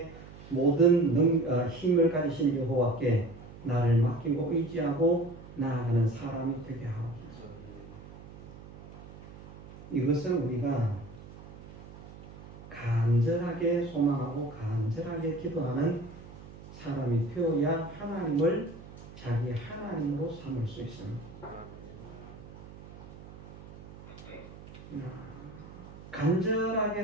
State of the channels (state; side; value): noise; right; hum, 17 dB below the sound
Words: 모든 힘을 가지신 여호와께 나를 맡기고 의지하고 나아가는 사람이 되게 하옵소서. 이것은 우리가 간절하게 소망하고 간절하게 기도하는 사람이 되어야 하나님을 자기 하나님으로 삼을 수 있습니다. 간절하게